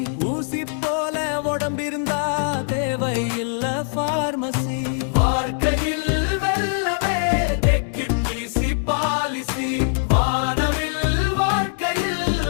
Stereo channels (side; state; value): right; silent; digital silence